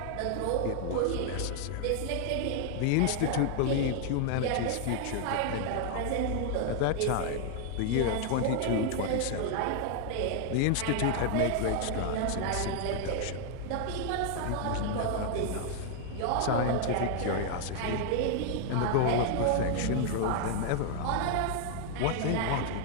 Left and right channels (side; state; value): both; different; correlation 0.00